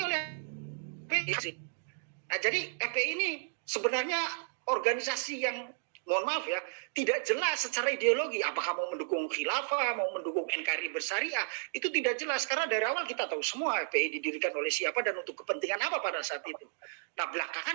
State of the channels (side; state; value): left; silent; digital silence